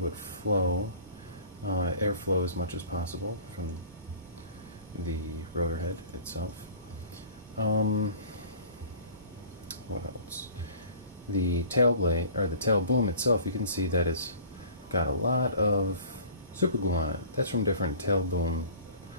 flow, airflow as much as possible from the rotor head itself. What else? The tail blade, or the tail boom itself, you can see that it's got a lot of super glue on it. That's from different tail boom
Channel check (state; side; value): inverted; both; correlation -0.45